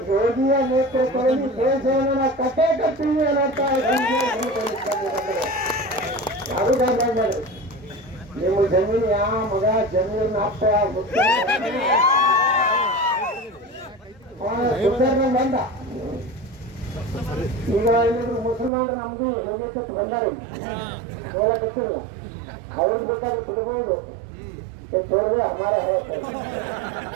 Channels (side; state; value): left; drops out; at 18.7 s